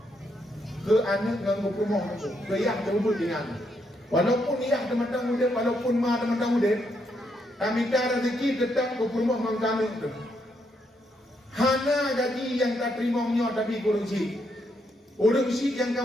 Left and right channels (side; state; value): both; normal; correlation 0.77